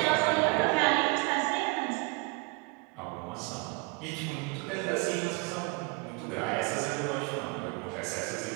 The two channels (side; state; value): left; quieter; 28.0 dB